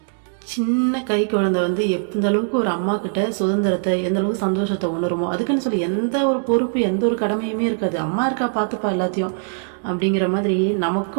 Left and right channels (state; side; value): silent; left; digital silence